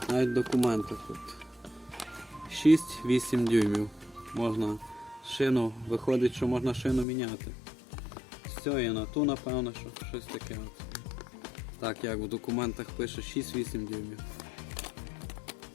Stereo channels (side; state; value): right; drops out; at 7.1 s